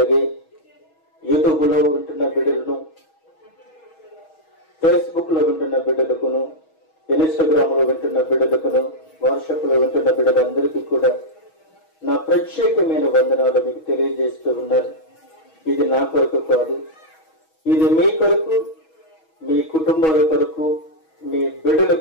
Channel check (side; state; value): right; late; 6.3 ms